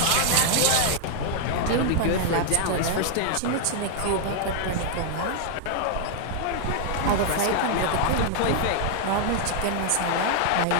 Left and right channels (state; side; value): different; both; correlation 0.00